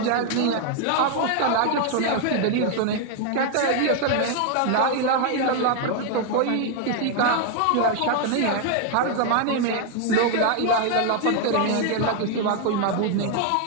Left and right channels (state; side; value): different; both; correlation 0.00